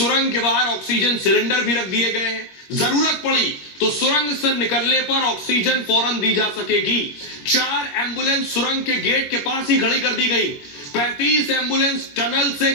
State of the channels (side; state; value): right; late; 22 ms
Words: के बाहर ऑक्सीजन सिलेंडर भी रख दिए गए हैं। जरूरत पड़ी तो सुरंग से निकलने पर ऑक्सीजन फौरन दी जा सकेगी। 4 एम्बुलेंस सुरंग के गेट के पास ही खड़ी कर दी गई। 35 एम्बुलेंस टनल से